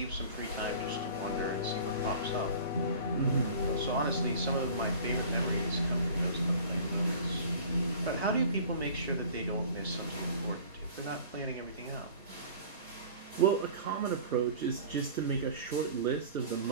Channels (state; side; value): inverted; both; correlation -0.43